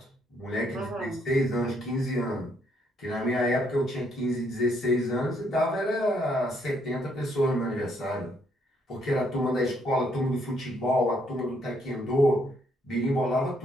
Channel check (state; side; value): normal; both; correlation 0.71